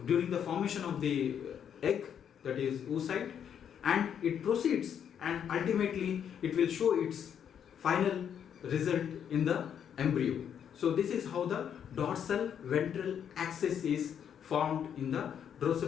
during the formation of the egg, that is oocyte, and it proceeds and ultimately it will show its final result in the embryo. So this is how the dorsal ventral axis is formed in the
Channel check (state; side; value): quieter; right; 8.5 dB